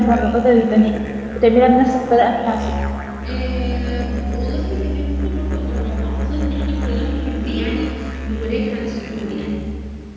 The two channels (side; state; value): both; identical; correlation 1.00